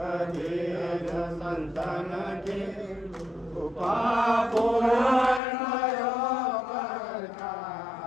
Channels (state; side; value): drops out; right; at 5.4 s